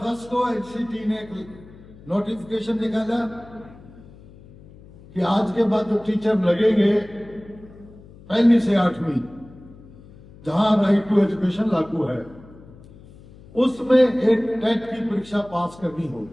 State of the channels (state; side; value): noise; left; hum, 21 dB below the sound